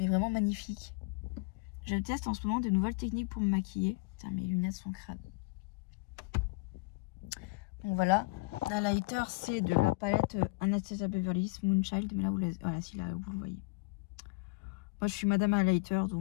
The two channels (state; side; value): quieter; right; 25.2 dB